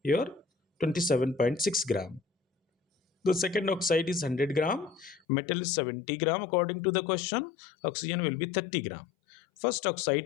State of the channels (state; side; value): drops out; right; at 5.2 s